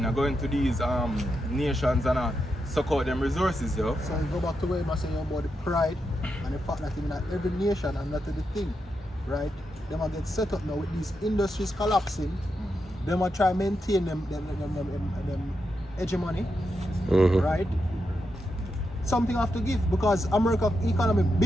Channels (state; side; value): normal; both; correlation 0.85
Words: I go into these nations and suck out them resources, yo. So you go back to where you say about the pride and the fact that in every nation and that is the thing, right? Them are get set up now with these industries collapsing. Them are try to maintain them hegemony, right? Something have to give because America economy